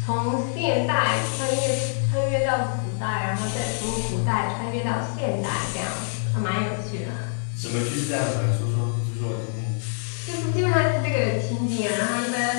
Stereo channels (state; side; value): silent; right; 62 dB below the other